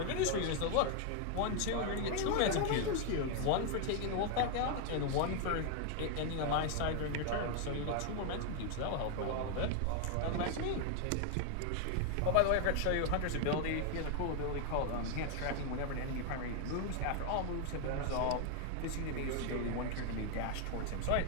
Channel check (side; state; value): both; different; correlation 0.00